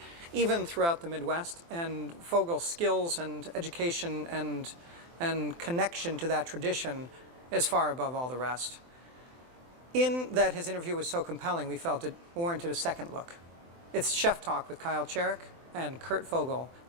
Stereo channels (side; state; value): left; late; 24 ms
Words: even throughout the Midwest, and Fogle's skills and education and connection to that tradition is far above all the rest. In that his interview was so compelling, we felt it warranted a second look. It's Chef Talk with Kyle Cherek and Kurt Fogle,